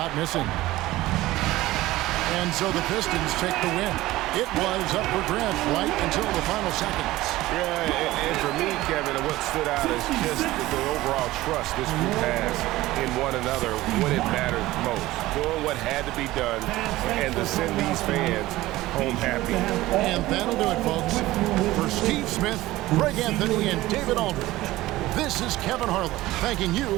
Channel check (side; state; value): left; quieter; 17.3 dB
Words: missing. And so the Pistons take the win. It was up for grabs right until the final seconds. Yeah, and for me, Kevin, what stood out is just the overall trust this group has in one another when it mattered most. Doing what had to be done and to send these fans home happy. And that'll do it, folks. For Steve Smith, Greg Anthony, and David Aldridge, this is Kevin Harlan thanking you